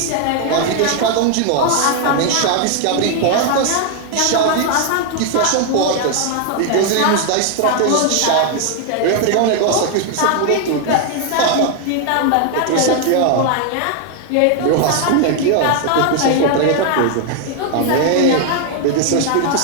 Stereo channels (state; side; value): different; both; correlation 0.00